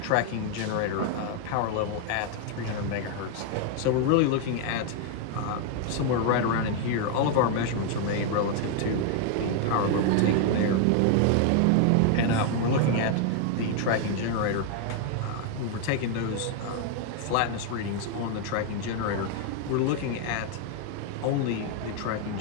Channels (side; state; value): both; different; correlation 0.00